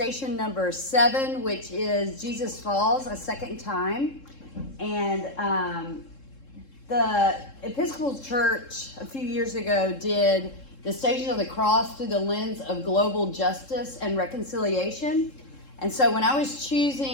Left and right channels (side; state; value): right; late; 3.7 ms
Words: number 7, which is Jesus Falls, a second time, and the Episcopal Church a few years ago did the Station of the Cross through the lens of global justice and reconciliation. And so when I was